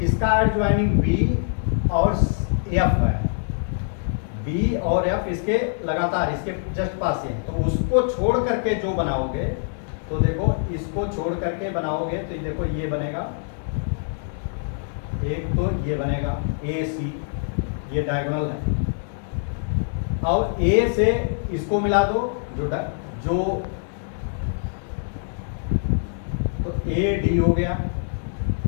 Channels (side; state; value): right; silent; digital silence